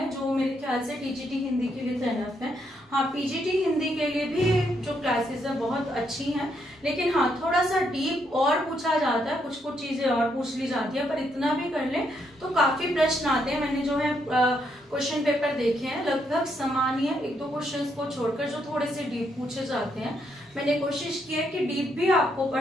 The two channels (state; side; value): normal; both; correlation 0.76